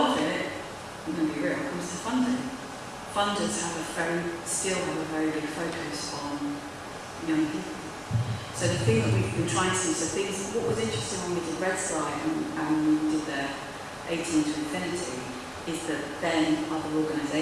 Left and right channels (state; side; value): identical; both; correlation 1.00